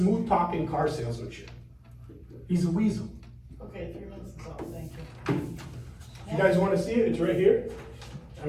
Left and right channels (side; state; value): both; identical; correlation 1.00